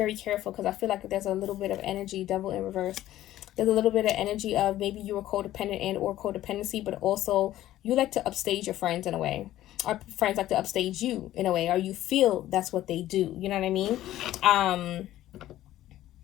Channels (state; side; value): quieter; right; 14.0 dB